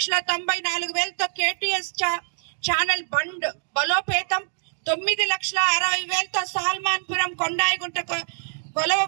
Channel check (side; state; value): left; silent; digital silence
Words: కేటీఎస్ ఛానల్ బండ్ బలోపేతం, 9,60,000తో సాల్మాన్పురం కొండాయిగుంట కొలవ